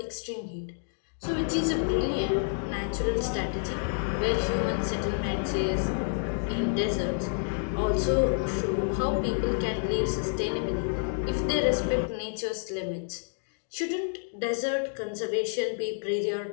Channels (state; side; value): silent; right; digital silence